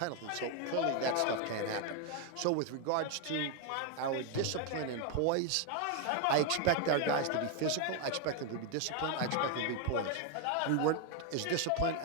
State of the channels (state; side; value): different; both; correlation 0.01